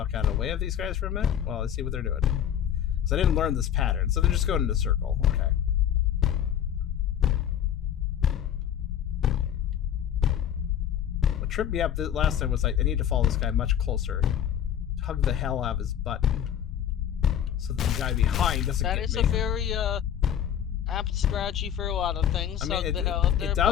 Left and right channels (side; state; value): right; quieter; 9.7 dB